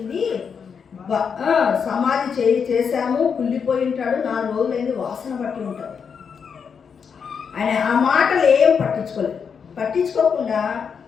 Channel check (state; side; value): quieter; right; 6.5 dB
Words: సమాధి చేశాము, కుళ్ళిపోయి ఉంటాడు, 4 రోజులైంది, వాసన పట్టి ఉంటాడు. ఆయన ఆ మాటలు ఏం పట్టించుకోకుండా